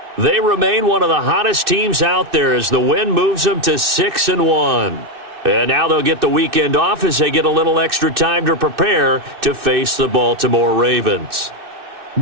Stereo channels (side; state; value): left; late; 2.6 ms